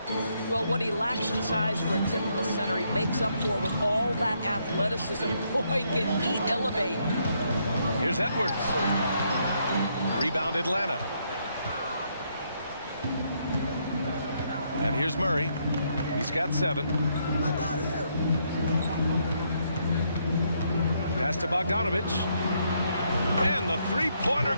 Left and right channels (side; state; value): both; inverted; correlation -0.74